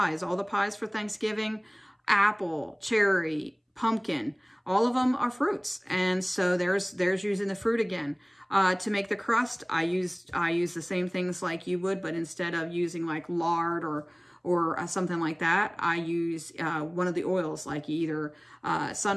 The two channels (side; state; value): both; identical; correlation 1.00